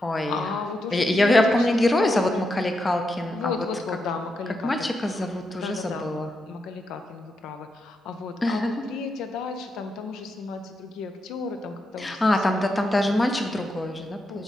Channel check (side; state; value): both; normal; correlation 0.84